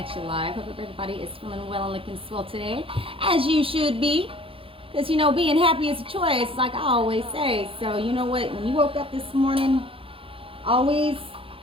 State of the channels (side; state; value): left; late; 0.26 ms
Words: you live. Hope everybody is feeling well and looking swell today, as you should be. Because, you know, being happy is a choice, like I always say. So, you know what? When you woke up this morning, always